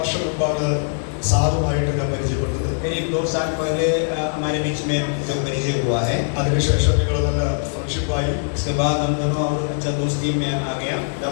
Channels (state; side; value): silent; right; 59 dB below the other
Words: മുമ്പാണ് സാധുവായിട്ട് ഞാൻ പരിചയപ്പെട്ടത്। करीब 2 साल पहले हमारे बीच में जो परिचय हुआ है। അതിനുശേഷം ഞങ്ങൾ നല്ല ഫ്രണ്ട്ഷിപ്പായി। इसके बाद हम दोनों और अच्छा दोस्ती में आ गया। ഞാൻ